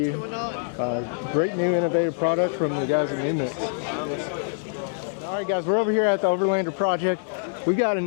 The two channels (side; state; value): right; silent; digital silence